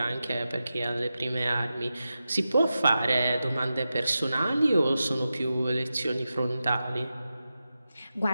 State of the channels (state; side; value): inverted; both; correlation -0.92